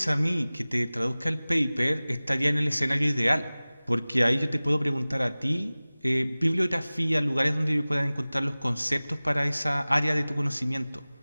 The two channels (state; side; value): inverted; both; correlation -0.99